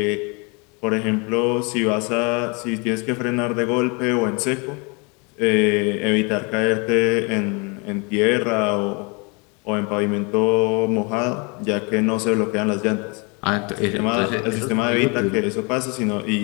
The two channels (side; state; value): right; quieter; 31.3 dB